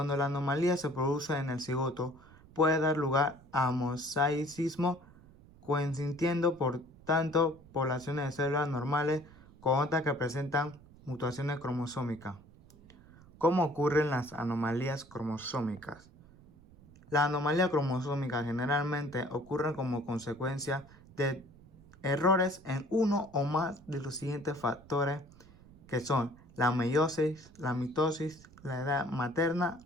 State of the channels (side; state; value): right; noise; rumble, 23 dB below the sound